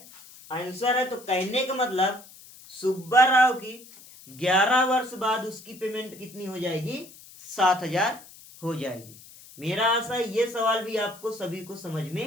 आंसर है। तो कहने का मतलब सुब्बा राव की 11 वर्ष बाद उसकी पेमेंट कितनी हो जाएगी 7,000 हो जाएगी। मेरा आशा है ये सवाल भी आपको सभी को समझ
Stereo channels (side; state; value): left; noise; hiss, 20 dB below the sound